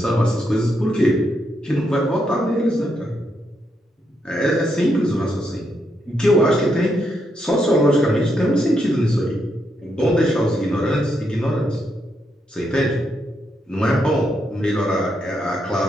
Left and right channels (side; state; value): both; normal; correlation 0.80